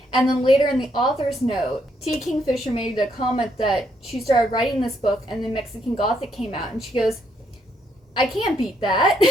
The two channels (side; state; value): both; normal; correlation 0.74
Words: And then later in the author's note, T. Kingfisher made a comment that she started writing this book and then Mexican Gothic came out, and she goes, I can't beat that.